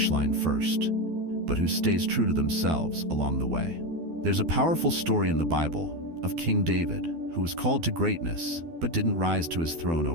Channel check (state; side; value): late; left; 12 ms